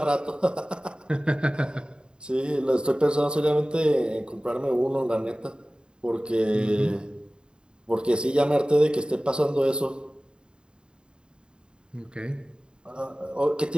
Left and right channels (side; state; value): left; late; 0.050 ms